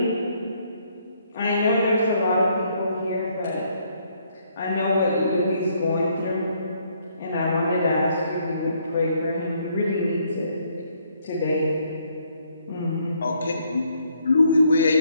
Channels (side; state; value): both; inverted; correlation -0.69